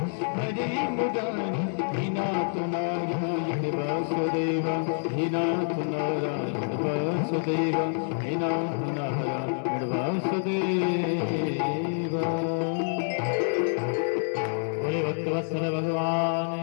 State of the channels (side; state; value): right; silent; digital silence